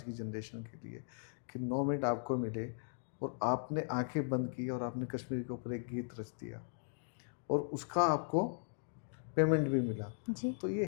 की जनरेशन के लिए कि 9 मिनट आपको मिले और आपने आंखें बंद की और आपने कश्मीर के ऊपर एक गीत रच दिया और उसका आपको पेमेंट भी मिला, जी। तो ये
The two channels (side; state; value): right; silent; digital silence